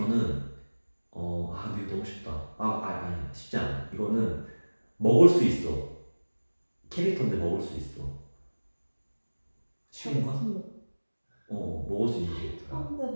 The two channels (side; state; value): both; inverted; correlation -1.00